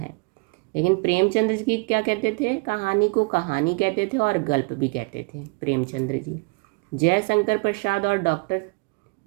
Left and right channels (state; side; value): quieter; left; 31.2 dB